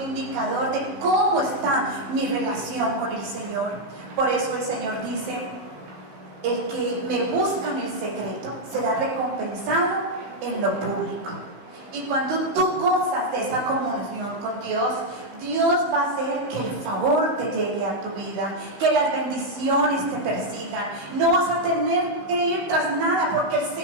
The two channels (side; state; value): left; late; 15 ms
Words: de cómo está mi relación con el Señor. Por eso el Señor dice, el que me busca en el secreto será recompensado en lo público. Y cuando tú gozas de esa comunión con Dios, Dios va a hacer que el favor te llegue a tu vida, que las bendiciones te persigan. No vas a tener que ir tras nada, porque el